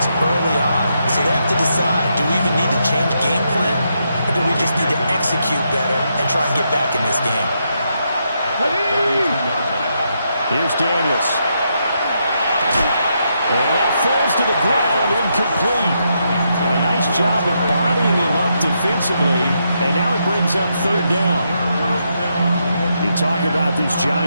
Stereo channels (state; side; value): inverted; both; correlation -0.81